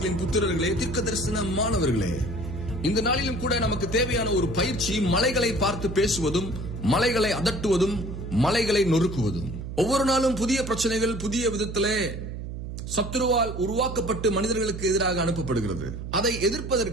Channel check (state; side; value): noise; right; hum, 7 dB below the sound